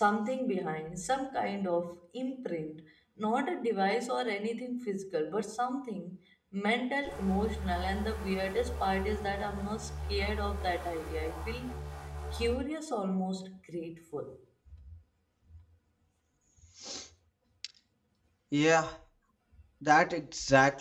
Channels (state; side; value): identical; both; correlation 1.00